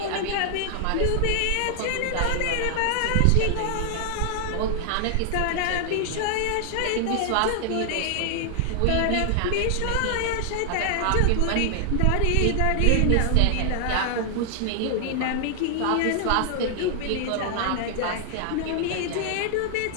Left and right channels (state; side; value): different; both; correlation 0.00